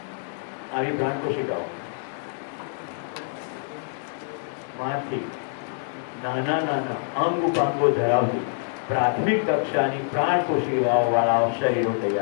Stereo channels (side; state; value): right; silent; digital silence